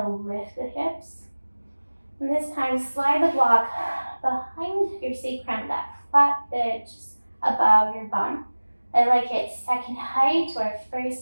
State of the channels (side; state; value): both; inverted; correlation -1.00